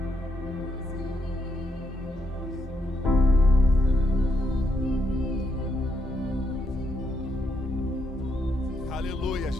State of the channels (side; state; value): both; normal; correlation 0.77